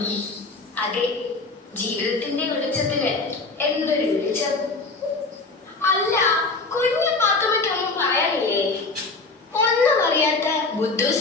അതെ, ജീവിതത്തിന്റെ വെളിച്ചത്തിന് എന്തൊരു വെളിച്ചം. അല്ല, കുഞ്ഞു പാത്തുമ്മയ്ക്കൊന്നും പറയാനില്ലേ? ഒന്നും അറിയാത്ത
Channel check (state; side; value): quieter; right; 3.7 dB